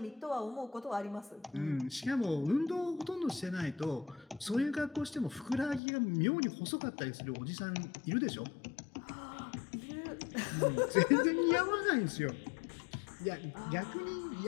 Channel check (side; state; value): right; drops out; at 5.8 s